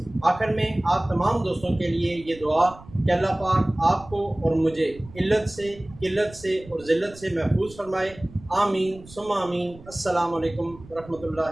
آخر میں آپ تمام دوستوں کے لیے یہ دعا کہ اللہ پاک آپ کو اور مجھے علت سے، قلت سے اور ذلت سے محفوظ فرمائے۔ آمین ثم آمین۔ السلام علیکم ورحمۃ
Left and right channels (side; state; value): right; noise; rumble, 20 dB below the sound